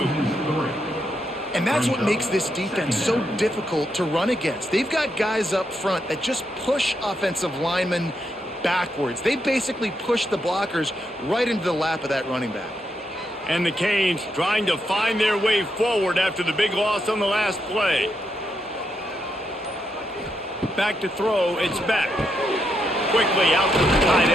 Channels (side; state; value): both; normal; correlation 0.81